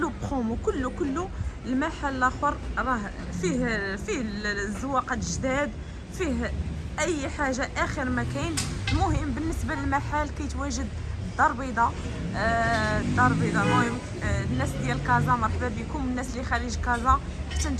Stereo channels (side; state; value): both; identical; correlation 1.00